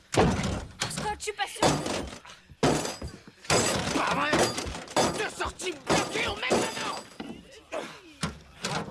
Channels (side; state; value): both; identical; correlation 1.00